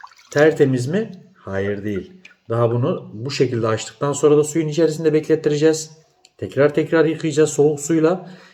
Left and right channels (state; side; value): identical; both; correlation 1.00